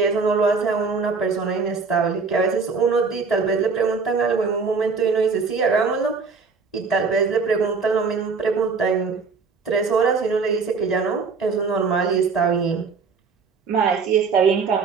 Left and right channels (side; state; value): left; quieter; 4.9 dB